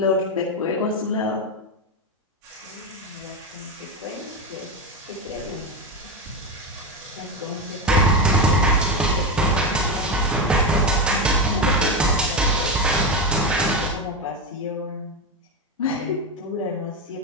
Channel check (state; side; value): normal; both; correlation 0.13